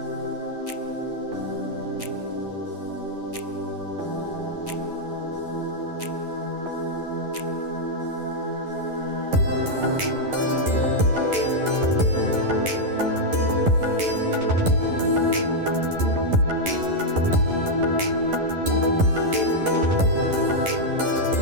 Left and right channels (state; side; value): late; left; 11 ms